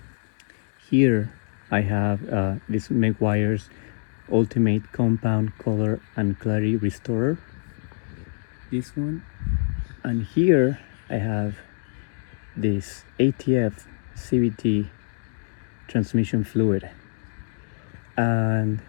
Here I have this Meguiar's Ultimate Compound Color and Clarity Restorer, this one, and here I have this ATF CVT Transmission Fluid, and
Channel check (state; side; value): silent; right; digital silence